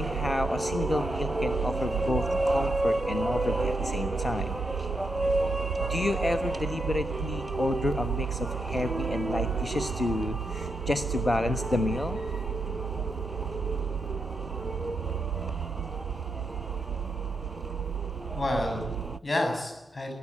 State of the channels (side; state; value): both; normal; correlation 0.83